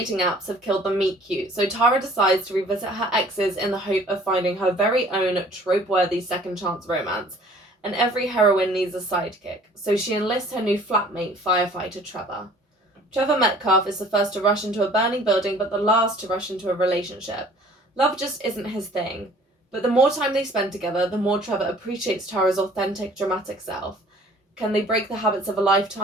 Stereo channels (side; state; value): both; normal; correlation 0.52